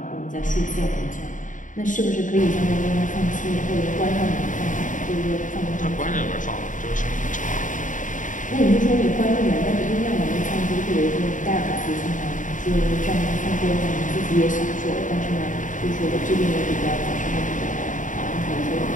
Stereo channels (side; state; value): right; late; 0.37 ms